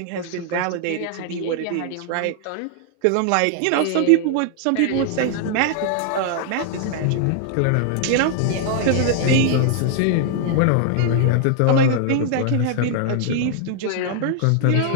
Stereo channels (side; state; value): both; different; correlation 0.00